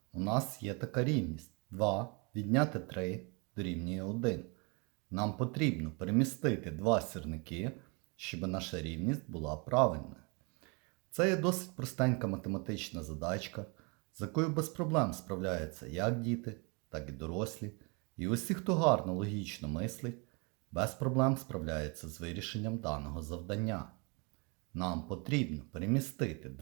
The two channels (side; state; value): left; quieter; 31.7 dB